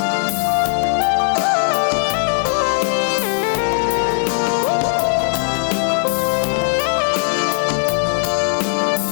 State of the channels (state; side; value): silent; right; 67 dB below the other